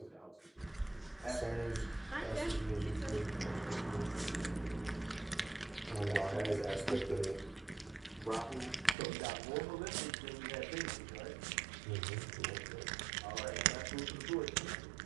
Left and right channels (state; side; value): drops out; left; at 9.0 s